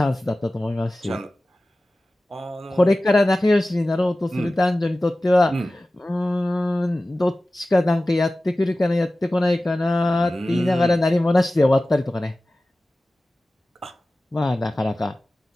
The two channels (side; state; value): both; normal; correlation 0.96